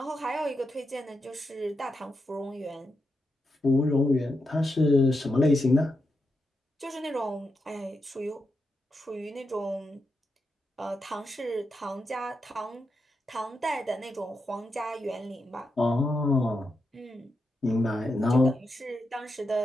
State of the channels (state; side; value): normal; both; correlation 0.86